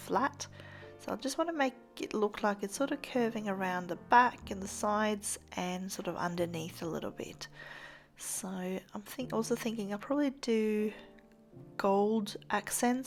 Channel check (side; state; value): both; identical; correlation 1.00